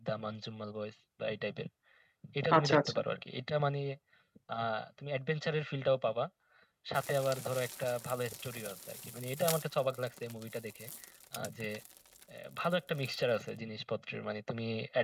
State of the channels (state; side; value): identical; both; correlation 1.00